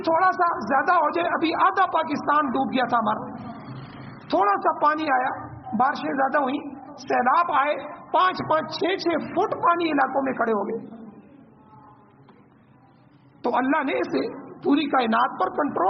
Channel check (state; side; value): identical; both; correlation 1.00